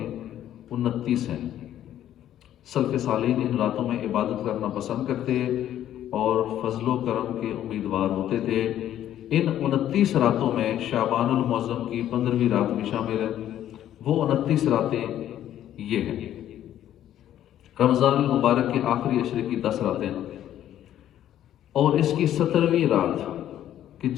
29 ہیں. سلف صالحین ان راتوں میں عبادت کرنا پسند کرتے اور فضل و کرم کے امیدوار ہوتے تھے. ان 29 راتوں میں شعبان المعظم کی 15ویں رات بھی شامل ہے۔ وہ 29 راتیں یہ ہیں: رمضان المبارک کے آخری عشرے کی 10 راتیں اور اس کی 17ویں رات کہ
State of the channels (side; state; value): right; quieter; 11.6 dB